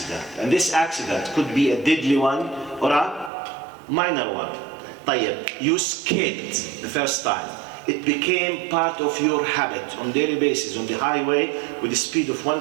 And this accident could be a deadly one or a minor one. طيب, you skipped the first time. It became part of your habit on daily basis on the highway with a speed of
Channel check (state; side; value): drops out; left; at 3.3 s